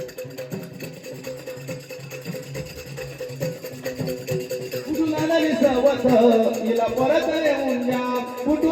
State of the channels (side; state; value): both; identical; correlation 1.00